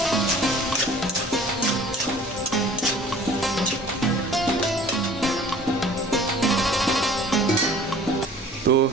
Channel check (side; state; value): both; normal; correlation 0.48